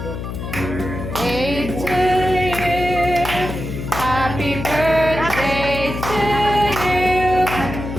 Birthday to you. Happy birthday to you.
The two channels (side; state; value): left; noise; hum, 6 dB below the sound